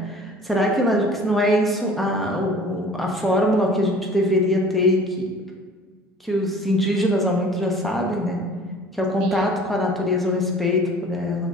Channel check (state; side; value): normal; both; correlation 0.47